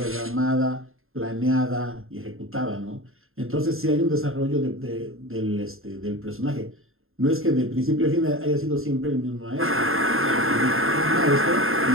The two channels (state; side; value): late; left; 0.61 ms